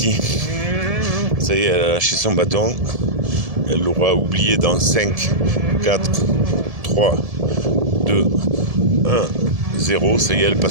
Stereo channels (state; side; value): late; left; 1.7 ms